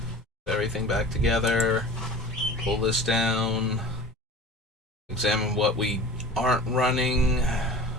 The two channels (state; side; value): normal; both; correlation 0.39